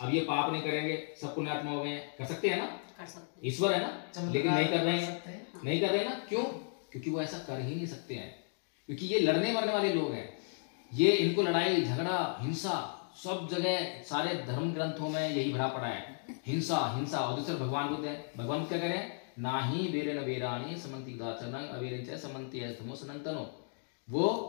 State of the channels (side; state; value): right; silent; 55 dB below the other